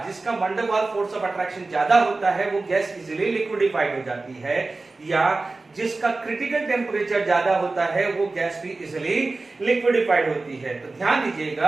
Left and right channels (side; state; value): left; quieter; 3.4 dB